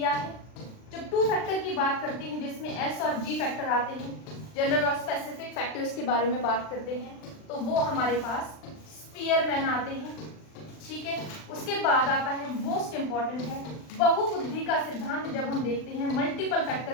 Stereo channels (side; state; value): right; late; 39 ms